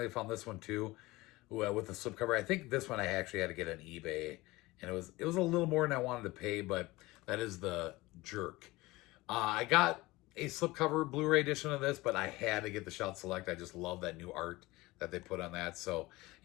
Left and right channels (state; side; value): quieter; right; 20.5 dB